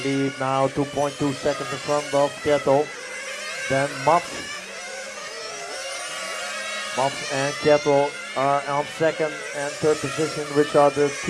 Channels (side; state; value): both; identical; correlation 1.00